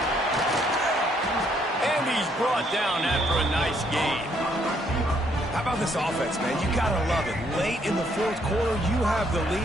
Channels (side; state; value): both; normal; correlation 0.69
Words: And he's brought down after a nice gain. How about this offense, man? You gotta love it. Late in the 4th quarter, you have the